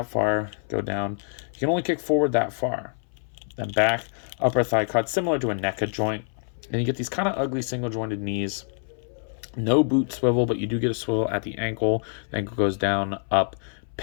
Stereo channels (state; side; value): silent; right; 59 dB below the other